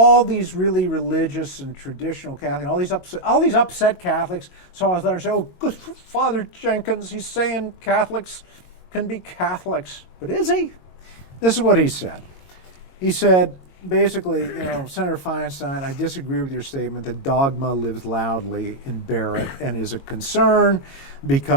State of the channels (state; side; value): late; right; 22 ms